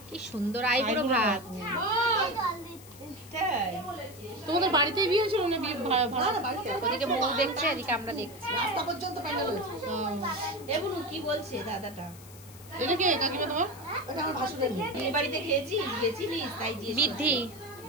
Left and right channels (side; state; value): left; noise; hiss, 20 dB below the sound